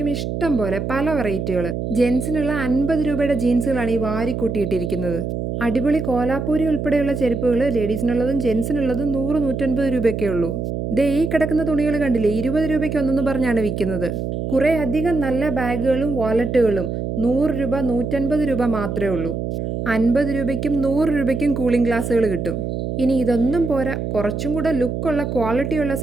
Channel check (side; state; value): right; noise; hum, 3 dB below the sound